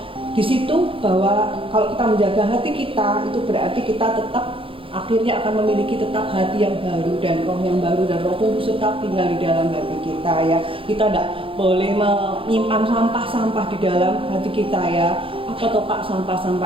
Di situ bahwa kalau kita menjaga hati kita, itu berarti kita tetap akhirnya akan memiliki tetap hati yang baru dan roh yang baru, dan Roh Kudus tetap tinggal di dalam hati kita ya. Kita tidak boleh menyimpan sampah-sampah di dalam hati kita ya. Apa toh Pak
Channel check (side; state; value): left; late; 0.26 ms